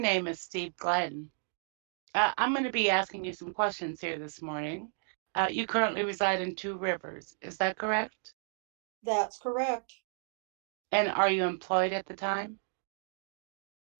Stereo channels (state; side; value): silent; left; digital silence